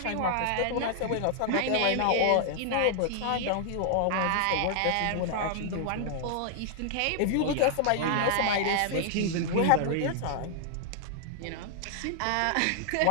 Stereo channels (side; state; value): both; different; correlation -0.01